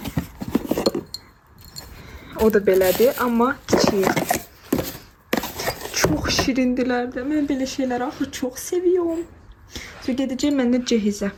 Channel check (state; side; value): identical; both; correlation 1.00